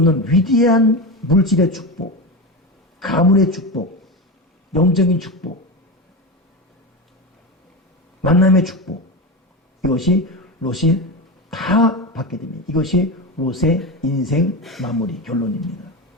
위대한 물질의 축복, 가문의 축복, 영적인 축복, 만남의 축복, 이것이 롯이 다 받게 됩니다. 이것이 롯의 인생 마무리 결론입니다.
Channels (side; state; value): both; normal; correlation 0.20